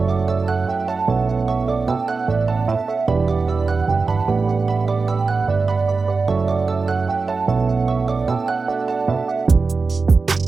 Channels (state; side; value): quieter; left; 4.2 dB